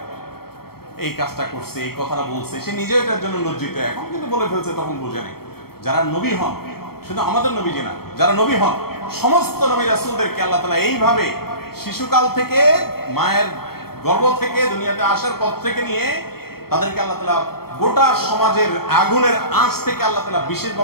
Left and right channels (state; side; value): late; right; 0.95 ms